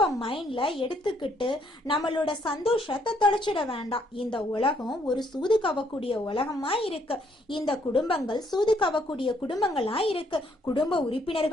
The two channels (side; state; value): both; normal; correlation 0.69